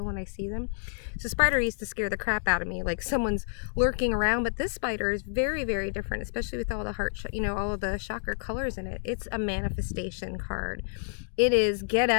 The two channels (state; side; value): silent; right; 59 dB below the other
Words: when I see them. So spider used to scare the crap out of me, like someone's lurking around. But this spider is very, very different, especially with all the heart, all of the chakra colors in it. It's a manifestation card. It is get